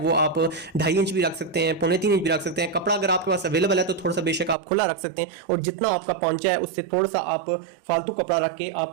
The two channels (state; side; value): drops out; left; at 4.5 s